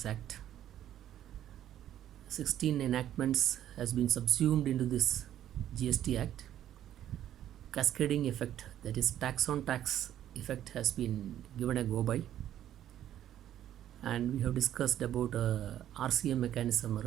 Act, 16 enactments has been subsumed into this GST Act. Cascading effect, that is tax on tax effect, has been given a go by. And we have discussed about RCM mechanism,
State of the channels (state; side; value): quieter; left; 11.5 dB